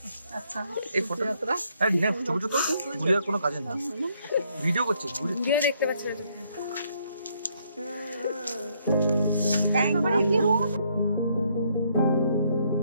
अच्छा এই ফটো আরে না, ছোট ছোট গুড়িয়ার কোনো কাজে না, ভিডিও করছে গুড়িয়া देखते बच्चे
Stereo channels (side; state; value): both; inverted; correlation -0.71